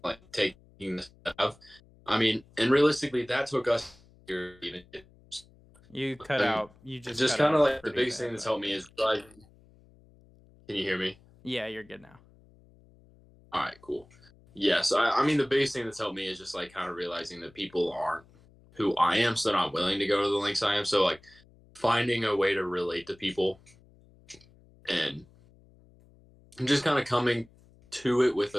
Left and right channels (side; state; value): left; noise; hum, 27 dB below the sound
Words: like taking the step. I mean, and realistically, that took us even. You cut out. You just kind of like the biggest thing that's helped me is like. Can you hear me? Yeah, you're good now. All right, cool. Yes, I mean the biggest thing that's helped me is just like kind of realizing that people aren't who I am, so they're not willing to go to the links I am. So like finding a way to relate to people and just kind of coming to it with